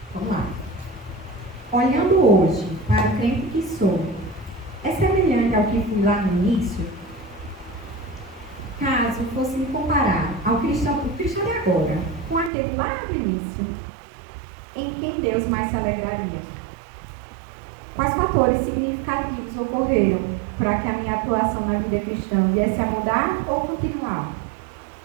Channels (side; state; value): left; drops out; at 12.5 s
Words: Vamos lá. Olhando hoje para o crente que sou, é semelhante ao que fui lá no início? Caso fosse me comparar ao cristão de agora, com aquele lá no início, em quem Deus mais se alegraria? Quais fatores significativos ocorreram para que a minha atuação na vida cristã viesse a mudar ou continuar?